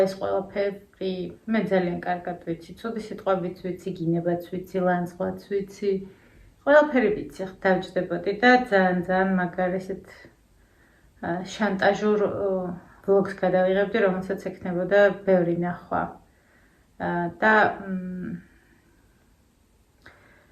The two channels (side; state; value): both; identical; correlation 1.00